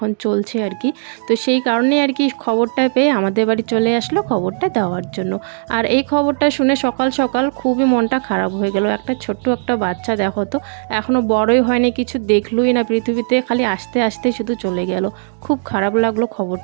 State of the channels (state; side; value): silent; left; digital silence